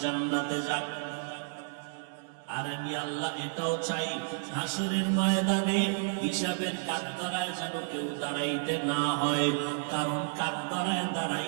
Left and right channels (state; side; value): silent; left; digital silence